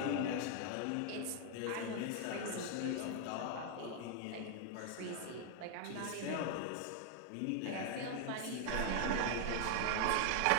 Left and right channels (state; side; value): different; both; correlation 0.00